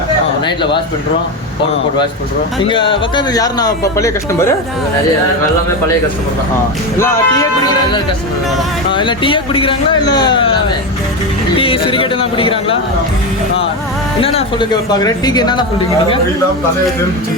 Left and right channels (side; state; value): both; normal; correlation 0.16